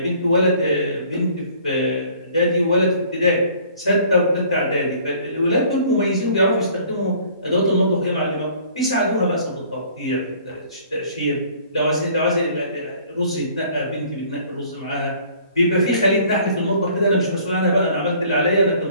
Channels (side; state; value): both; inverted; correlation -0.55